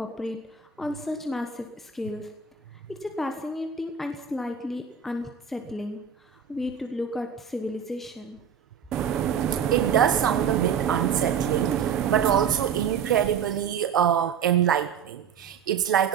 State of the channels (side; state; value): left; quieter; 7.3 dB